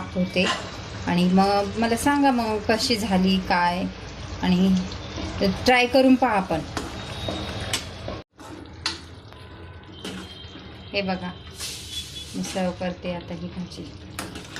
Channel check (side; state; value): both; identical; correlation 1.00